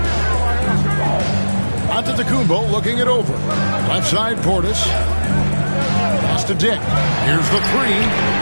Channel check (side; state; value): both; inverted; correlation -1.00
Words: Antetokounmpo looking it over. Left side, Portis. Pass to Dick. Here's the 3.